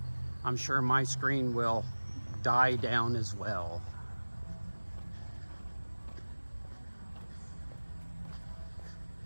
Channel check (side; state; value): both; inverted; correlation -1.00